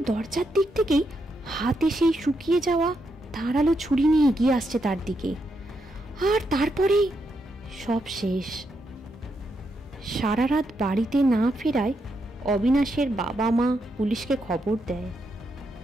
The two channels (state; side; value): normal; both; correlation 0.81